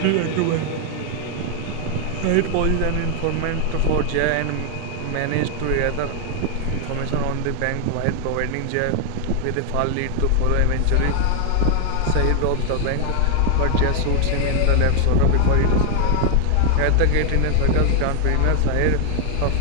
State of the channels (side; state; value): both; different; correlation 0.00